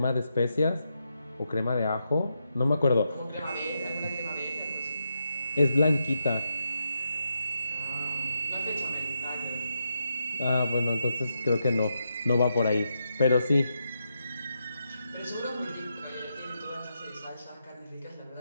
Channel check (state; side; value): inverted; both; correlation -0.84